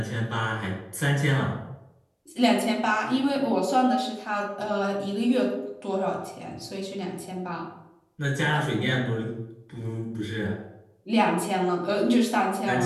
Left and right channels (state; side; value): identical; both; correlation 1.00